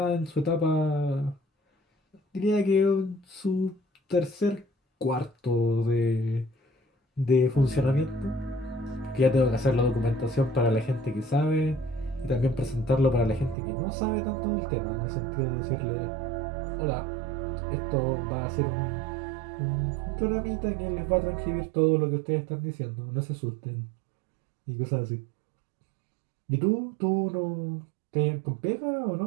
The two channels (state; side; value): drops out; left; at 13.6 s